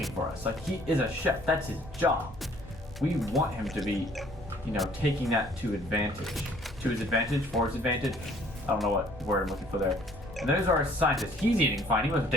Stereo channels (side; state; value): both; normal; correlation 0.58